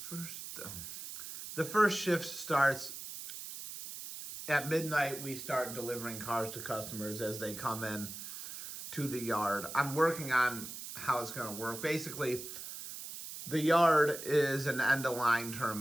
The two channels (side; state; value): right; noise; hiss, 9 dB below the sound